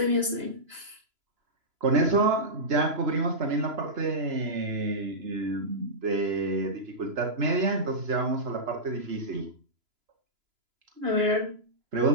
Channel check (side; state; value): left; late; 3.0 ms